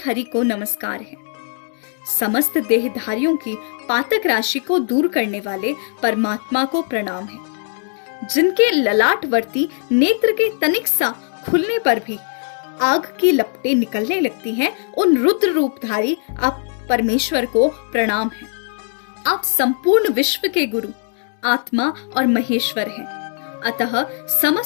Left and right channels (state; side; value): silent; right; 60 dB below the other